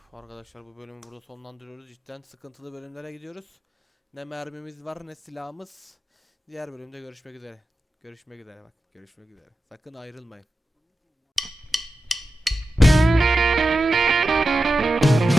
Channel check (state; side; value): normal; both; correlation 0.92